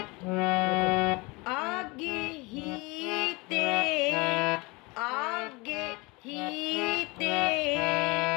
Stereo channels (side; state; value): right; quieter; 25.6 dB